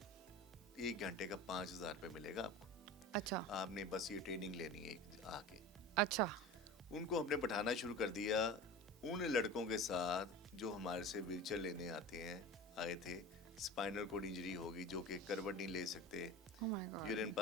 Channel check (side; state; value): both; normal; correlation 0.33